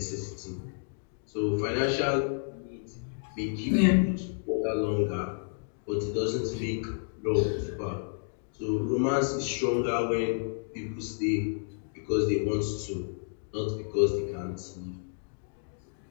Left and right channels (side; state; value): right; silent; digital silence